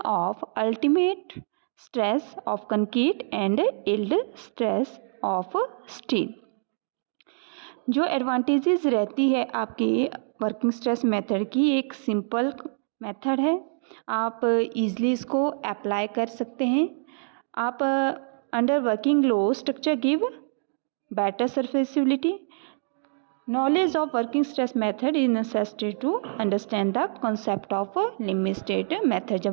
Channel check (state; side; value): silent; left; digital silence